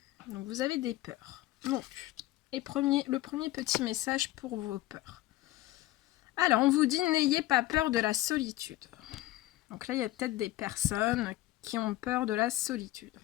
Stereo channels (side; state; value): right; quieter; 16.7 dB